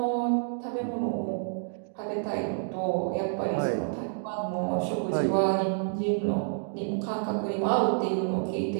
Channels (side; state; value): left; silent; digital silence